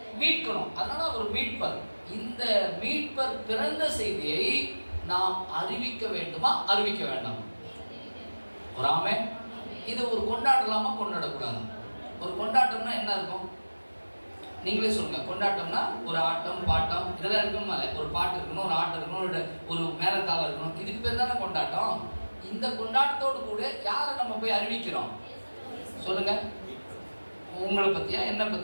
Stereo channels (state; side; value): inverted; both; correlation -1.00